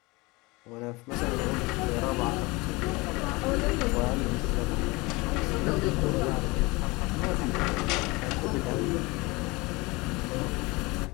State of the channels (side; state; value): right; quieter; 24.3 dB